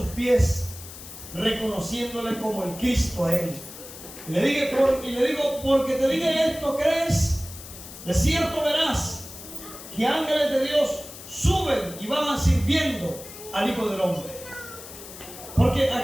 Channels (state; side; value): noise; left; hiss, 14 dB below the sound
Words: pies, reconociéndole como el Cristo a Él. Y le digo, porque te dije esto, ¿crees? De cierto verás que ángeles de Dios suben y van sirviendo al Hijo del Hombre. Porque